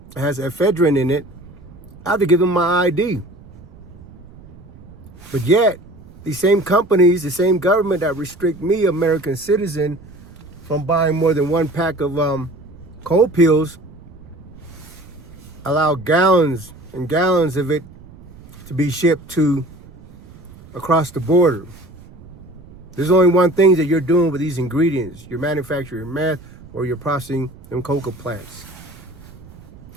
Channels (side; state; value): right; noise; rumble, 21 dB below the sound